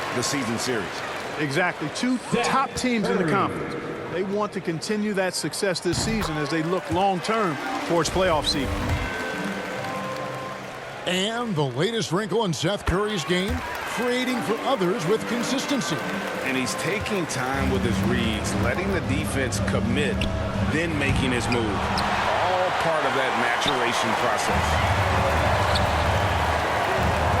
the season series. Exactly. 2 top teams in the conference. They want to continue that success this season as they look long-term towards playoff seeding. And the latest wrinkle in Seth Curry's game, creating for others with consistency. And he's taking time with his reads, letting the defense commit, then making his move. All part of that maturation process.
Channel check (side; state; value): both; identical; correlation 1.00